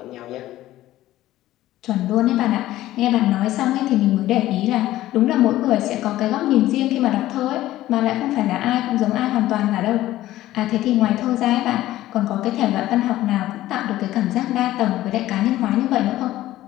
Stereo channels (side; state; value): right; quieter; 15.0 dB